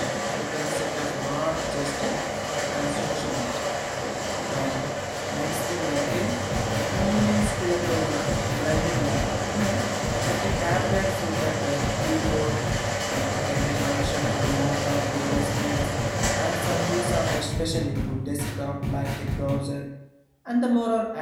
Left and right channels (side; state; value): both; identical; correlation 1.00